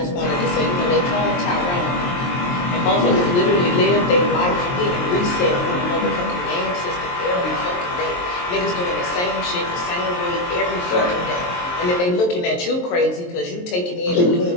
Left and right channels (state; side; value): late; right; 23 ms